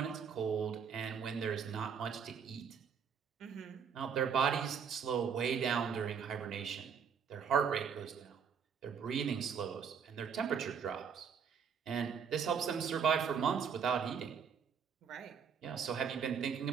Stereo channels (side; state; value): left; quieter; 7.0 dB